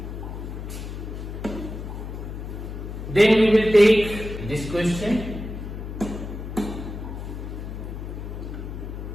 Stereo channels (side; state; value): left; noise; hum, 7 dB below the sound